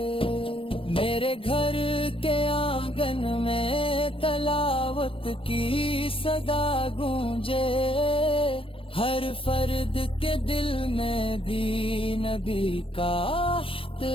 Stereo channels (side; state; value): right; late; 0.26 ms